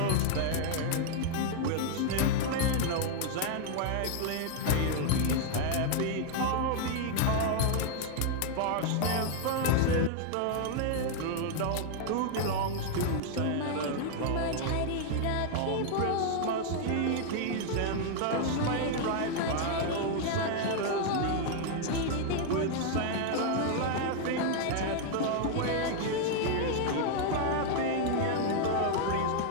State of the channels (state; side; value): different; both; correlation 0.00